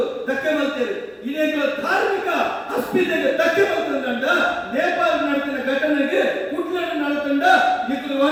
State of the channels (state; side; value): identical; both; correlation 1.00